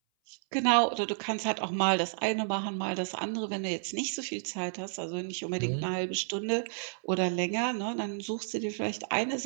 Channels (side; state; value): left; silent; 57 dB below the other